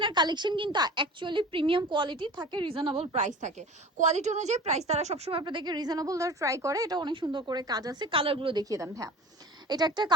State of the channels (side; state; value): both; normal; correlation 0.38